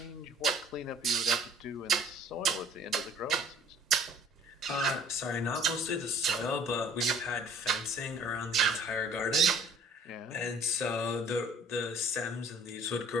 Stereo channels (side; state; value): both; normal; correlation 0.53